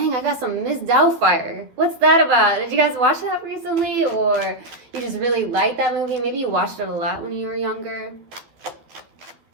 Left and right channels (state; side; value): late; left; 12 ms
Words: I got some Miss Doubtfire. What's that about? Did you guys watch that recently, or you just really like that movie? Maybe you watched it a lot when you were younger.